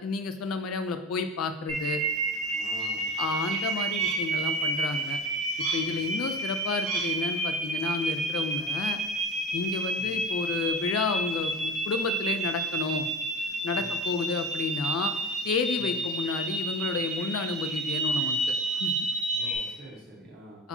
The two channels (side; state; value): both; normal; correlation 0.31